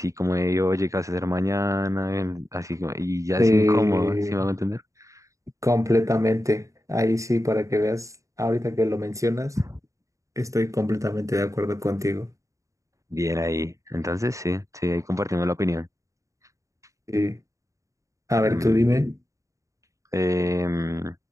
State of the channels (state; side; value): late; left; 0.15 ms